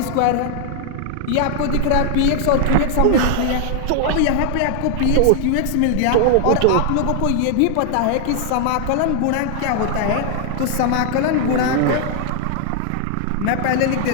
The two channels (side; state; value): both; different; correlation 0.00